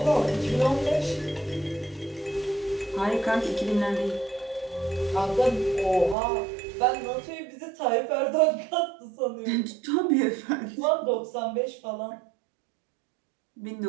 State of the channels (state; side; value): drops out; left; at 6.2 s